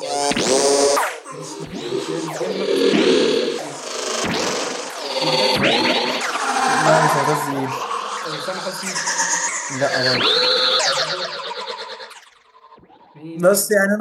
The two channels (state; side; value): identical; both; correlation 1.00